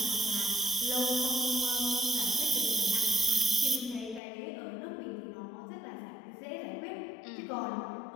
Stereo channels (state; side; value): drops out; right; at 4.2 s